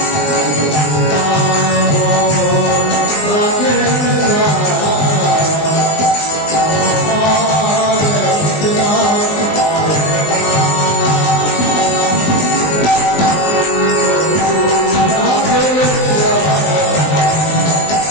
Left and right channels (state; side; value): late; right; 20 ms